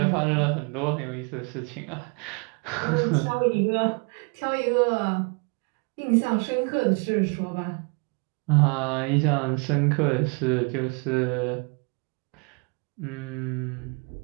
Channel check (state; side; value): quieter; left; 33.8 dB